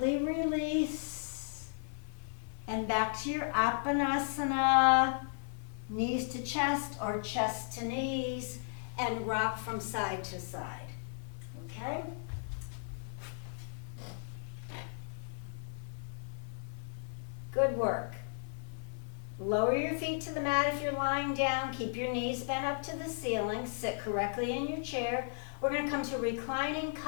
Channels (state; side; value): silent; right; 54 dB below the other